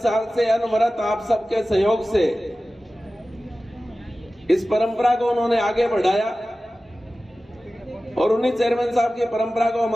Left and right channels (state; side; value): normal; both; correlation 0.96